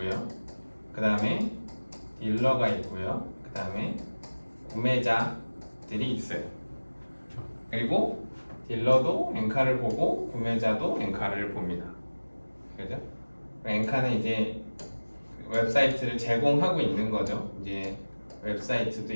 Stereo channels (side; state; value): both; inverted; correlation -1.00